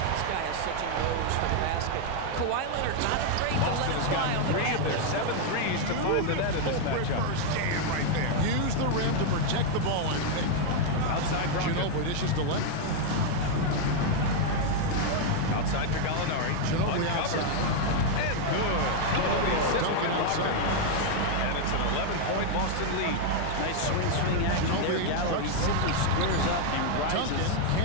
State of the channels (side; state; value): both; different; correlation 0.00